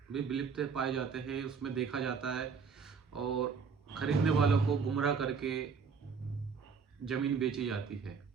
भी विलुप्त पाए जाते हैं, उसमें देखा जाता है और खरीदने वालों को गुमराह करके ज़मीन बेची जाती है।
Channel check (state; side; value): quieter; left; 5.7 dB